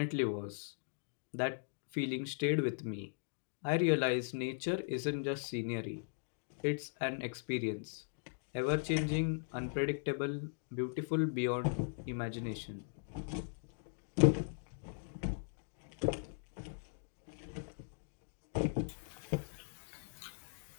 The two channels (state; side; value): silent; right; digital silence